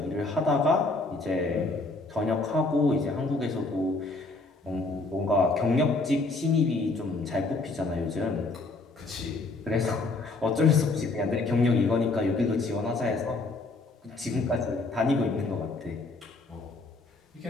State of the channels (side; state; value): right; quieter; 3.4 dB